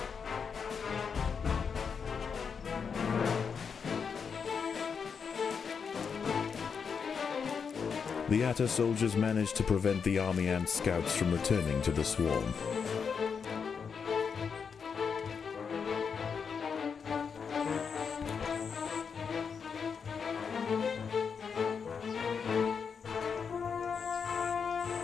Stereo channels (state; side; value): quieter; right; 6.2 dB